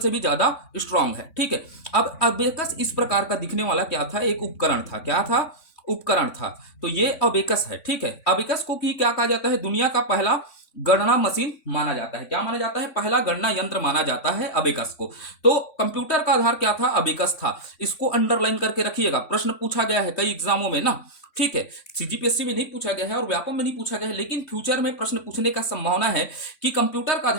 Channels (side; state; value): right; late; 3.5 ms